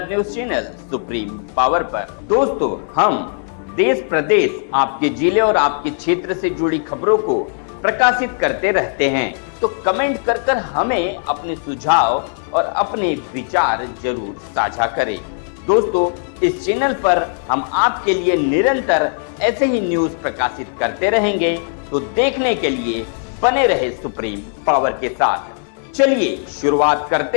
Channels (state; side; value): silent; right; 58 dB below the other